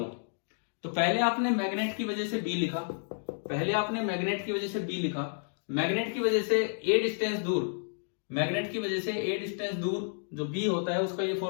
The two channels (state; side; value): silent; right; digital silence